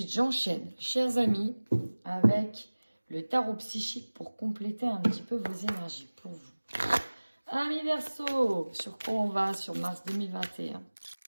j'enchaîne, chers amis, avec le tarot psychique pour compléter un petit peu vos énergies pour vous. Amis Verseau, sur quoi on va sur mars 2021?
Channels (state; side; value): inverted; both; correlation -1.00